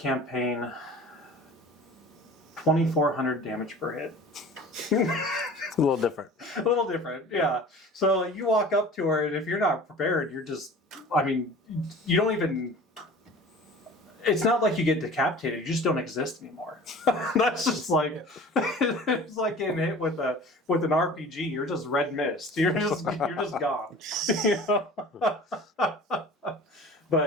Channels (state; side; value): normal; both; correlation 0.42